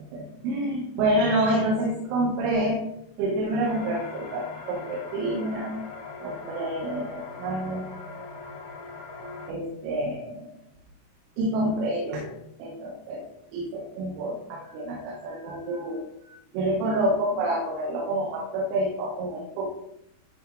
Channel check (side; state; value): left; late; 32 ms